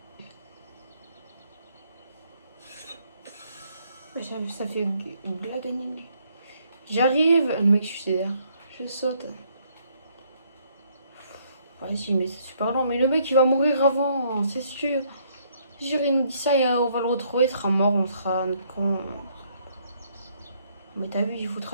Ça fait une blague animée. J'arrive, le mec suicidaire. Je saute. Vas-y, mais c'est super long. Mais le mec, il va mourir avant, c'est sûr. Il nous dit ça et on va le retrouver, il sera mort, on sera con. Mais t'as vu, il faut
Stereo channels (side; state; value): both; inverted; correlation -0.68